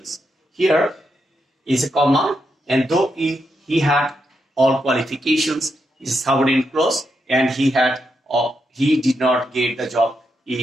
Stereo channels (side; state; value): both; normal; correlation 0.83